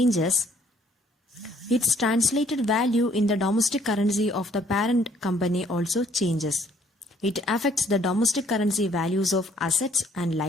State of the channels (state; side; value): normal; both; correlation 0.62